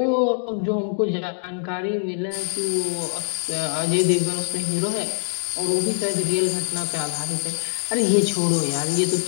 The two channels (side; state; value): right; silent; digital silence